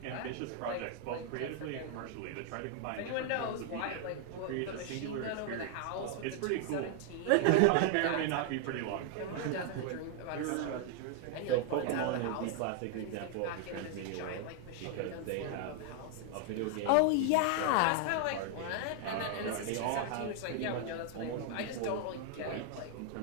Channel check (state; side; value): different; both; correlation 0.00